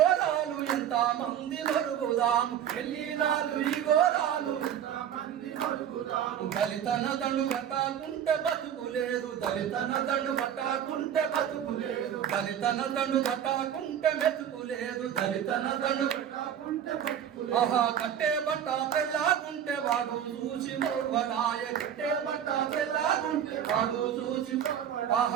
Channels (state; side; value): quieter; left; 9.5 dB